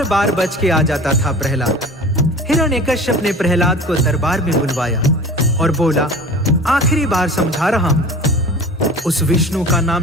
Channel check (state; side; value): normal; both; correlation 0.39